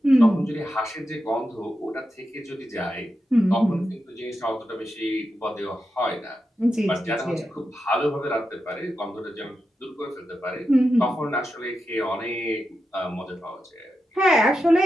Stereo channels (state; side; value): normal; both; correlation 0.88